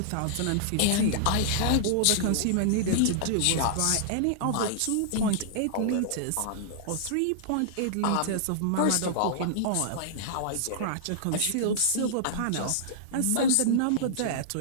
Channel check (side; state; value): both; different; correlation -0.01